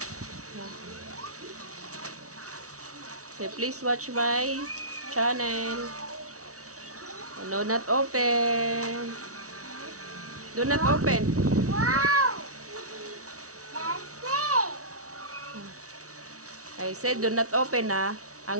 Say, please watch my channel. Do not open. Do not open. Wow! That's it! I said, do not open, ha?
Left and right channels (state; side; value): late; left; 0.65 ms